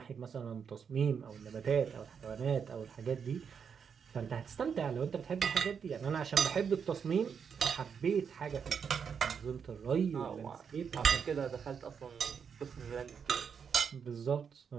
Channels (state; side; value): quieter; left; 6.8 dB